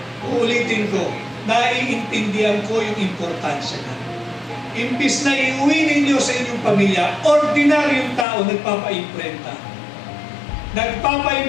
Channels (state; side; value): drops out; right; at 8.2 s